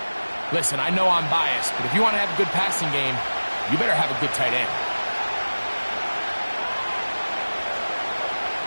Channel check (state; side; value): inverted; both; correlation -1.00